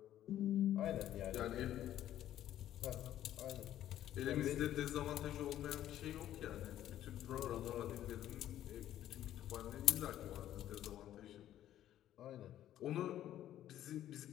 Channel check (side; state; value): right; quieter; 12.2 dB